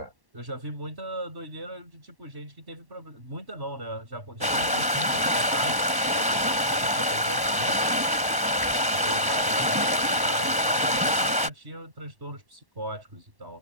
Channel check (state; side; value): late; left; 1.1 ms